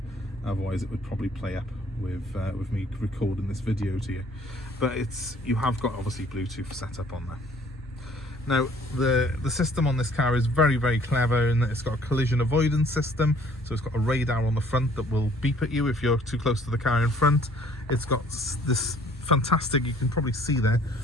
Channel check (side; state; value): both; normal; correlation 0.58